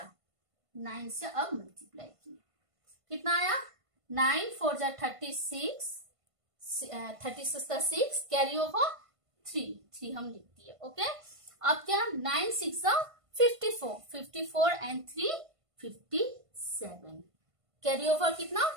9 से अब मल्टीप्लाई किए कितना आया, 9 4 जा 36, 36 का 6 कैरी ओवर 3 हम लिख दिए। ओके, अब क्या 9 6 जा 54, 54 एंड 3 57, कैरी ओवर कितना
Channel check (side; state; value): left; late; 1.5 ms